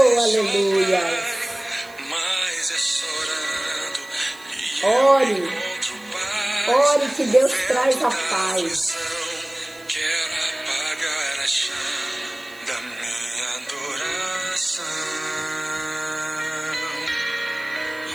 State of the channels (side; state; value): right; noise; hiss, 23 dB below the sound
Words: aleluia. Ore, ore que Deus traz a paz. Quero apagar a chama da minha adoração.